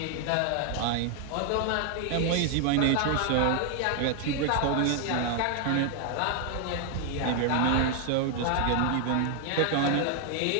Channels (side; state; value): both; different; correlation 0.00